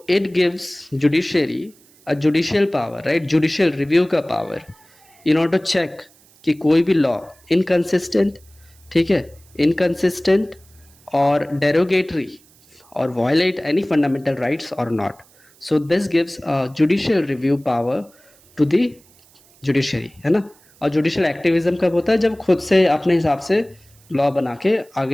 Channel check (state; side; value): noise; right; hiss, 29 dB below the sound